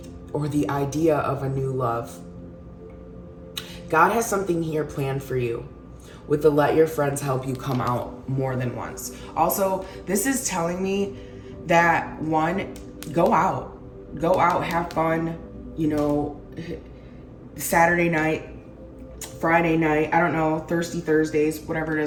or the idea of a new love. God has something here planned for you with the let your friends help you come out more than once. Also, this is telling me that one, go out, have fun, Saturday night, Friday night, I don't know, Thirsty Thursdays, whatever it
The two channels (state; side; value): identical; both; correlation 1.00